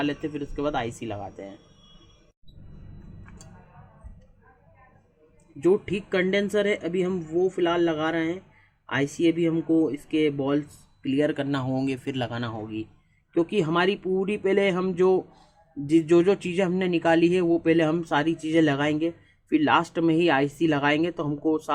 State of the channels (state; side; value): identical; both; correlation 1.00